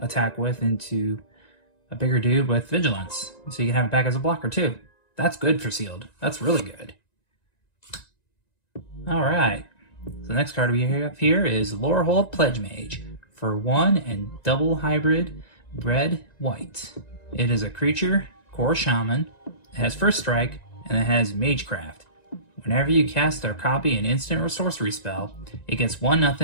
with into a bigger dude with vigilance. So you can have it back as a blocker too. That's good for sealed. That's really good. Alright. So the next card we have here is Lorehold Pledge Mage for 1 and double hybrid red white. It is a creature, core shaman. It has first strike and it has magecraft. Whenever you cast or copy an instant or sorcery spell, it gets 1/0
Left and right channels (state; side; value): late; right; 1.9 ms